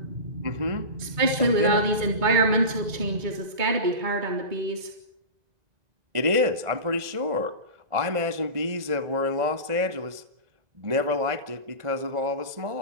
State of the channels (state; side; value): late; left; 2.2 ms